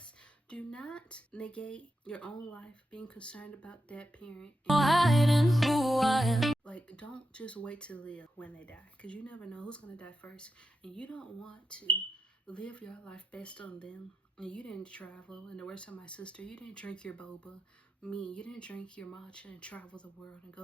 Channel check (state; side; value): normal; both; correlation 0.87